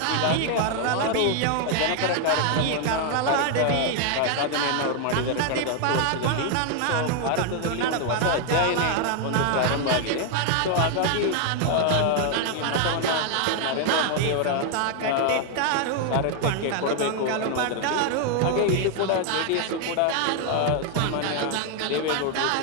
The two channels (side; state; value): both; different; correlation 0.00